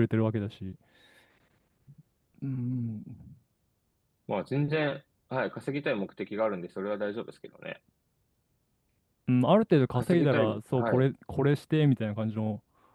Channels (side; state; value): both; identical; correlation 1.00